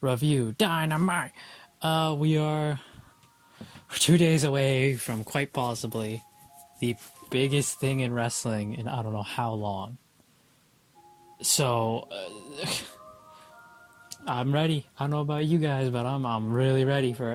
review. Dynamite! We are 2 days away from quite possibly the biggest thing in wrestling in I don't know how long. So, I'm ready. I don't know about you guys, but I'm really ready for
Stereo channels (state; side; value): identical; both; correlation 1.00